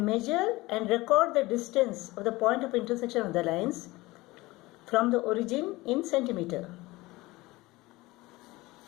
measure and record the distance of the point of intersection of the lines from the origin in centimeter.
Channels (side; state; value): right; quieter; 20.5 dB